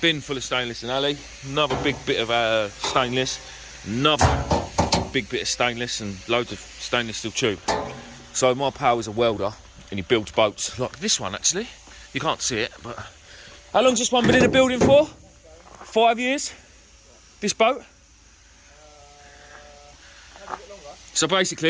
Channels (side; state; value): both; identical; correlation 1.00